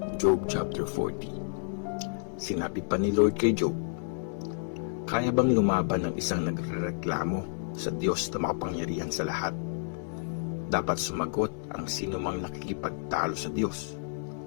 Job chapter 40. Sinabi pa ni Lord kay Job, kaya bang lumaban ng isang nagrereklamo sa Diyos na makapangyarihan sa lahat? Dapat sumagot ang sino mang nakikipagtalo sa Diyos.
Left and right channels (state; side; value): silent; right; 58 dB below the other